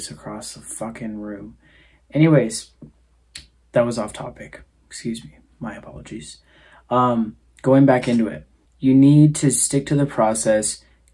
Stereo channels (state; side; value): identical; both; correlation 1.00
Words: across the fucking room. Anyways, that was off topic. Excuse me, my apologies. Going back into it, you need to stick to the process.